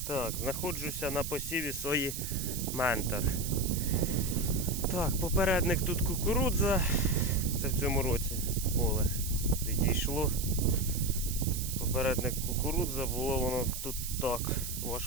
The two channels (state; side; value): noise; right; hiss, 6 dB below the sound